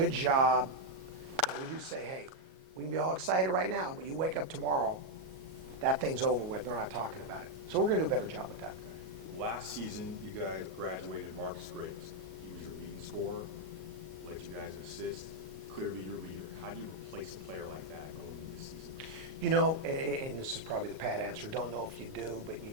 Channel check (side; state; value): left; late; 38 ms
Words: job. And we do say, hey, we can be all excited right now, but you wake up tomorrow, that thing's over with. They're not talking about it. So we're going to do a better job with that. Okay. Last season, you guys graduated Marcus Graves. He was your leading scorer, led you guys in assists. Clearly your leader. How do you replace a player like that going into this season? And this is probably the pat answer, don't know if you do, but you